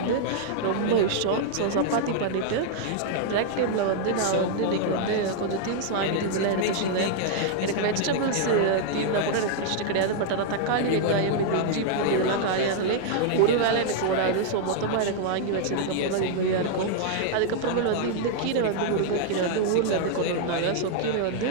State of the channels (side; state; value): both; different; correlation 0.00